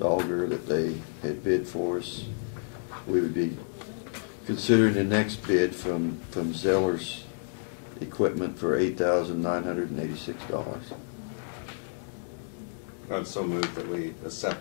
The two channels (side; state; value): right; silent; digital silence